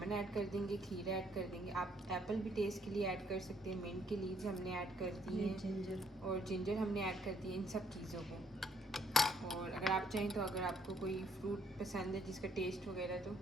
ऐड कर देंगे, खीरा ऐड कर देंगे। आप एप्पल भी टेस्ट के लिए ऐड कर सकते हैं, मिंट की लीव्स हमने ऐड कर दी हैं, जिंजर हमने ऐड कर दी है, इन सब चीज़ों को। और अगर आप चाहें तो अगर आपको कोई फ्रूट पसंद है जिसका टेस्ट वगैरह, तो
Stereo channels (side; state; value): both; normal; correlation 0.67